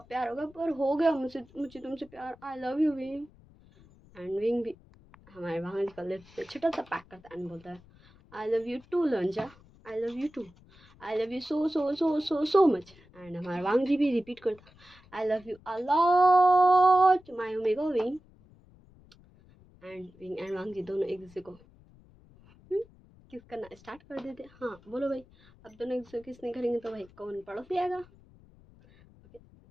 प्यार होगा पर हो गया मुझे तुमसे प्यार, आई love you wing. And wing भी हमारे वहाँ का लिप्स पे छोटा सा पैक करता है एंड बोलता है आई लव यू टू लंजा, I love you too, I love you so so so so so much. And हमारा वांग जी भी रिपीट करता I love you a lot my omega विंग। एंड विंग एंड वांग जी दोनों एक दूसरे को किस करना स्टार्ट कर देते। हाँ बोलो भाई, अब दोनों एक दूसरे को किस नहीं करेंगे तो भाई कौन पड़ोसी आएगा। ओके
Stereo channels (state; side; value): noise; left; rumble, 26 dB below the sound